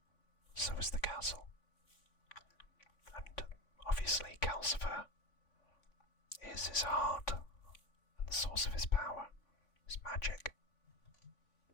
so is the castle. And obviously Calcifer is his heart and the source of his power, his magic.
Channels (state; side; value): late; right; 3.5 ms